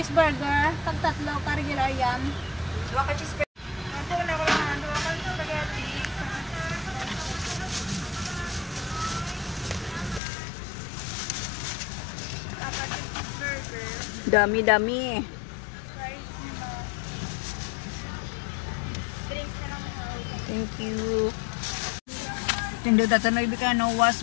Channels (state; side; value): drops out; right; at 10.2 s